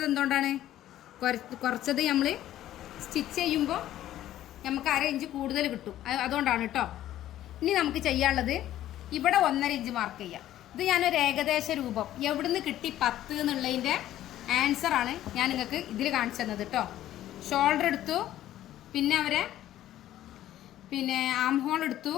എന്തുകൊണ്ടാണ്? കുറച്ചത് നമ്മൾ സ്റ്റിച്ച് ചെയ്യുമ്പോൾ നമുക്ക് 1/2 ഇഞ്ച് കൂടുതൽ കിട്ടും. അതുകൊണ്ടാണ് കേട്ടോ. ഇനി നമുക്ക് ചെയ്യാനുള്ളത് ഇവിടെ 1.5 ഇഞ്ച് മാർക്ക് ചെയ്യാം. ഇത് ഞാനൊരു ഏകദേശ രൂപം എവിടുന്ന് കിട്ടി 10 എന്നുള്ളതിൻ്റെ ആൻസറാണ് ഞാൻ നിങ്ങൾക്ക് ഇതിൽ കാണിച്ചു തന്നത് കേട്ടോ. ഷോൾഡർ എടുത്തു, പിന്നെ ആം ഹോൾ എടുത്തു,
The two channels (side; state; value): right; quieter; 13.1 dB